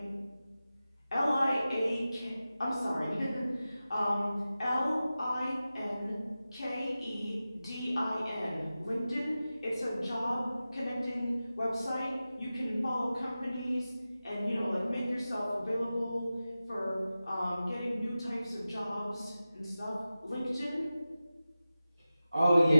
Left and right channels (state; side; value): inverted; both; correlation -0.95